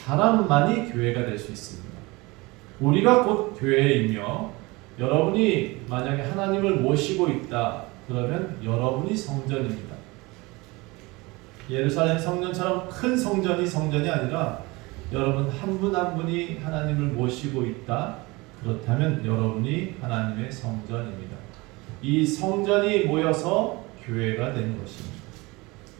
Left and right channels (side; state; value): left; quieter; 23.7 dB